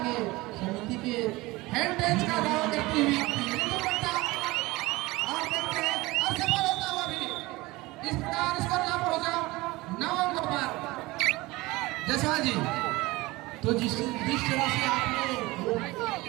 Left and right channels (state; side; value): quieter; left; 21.1 dB